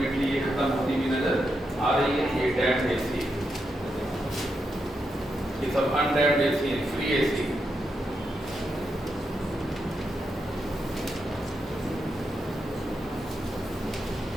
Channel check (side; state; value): both; normal; correlation 0.84